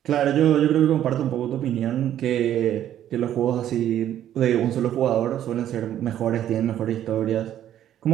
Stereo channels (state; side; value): quieter; left; 11.3 dB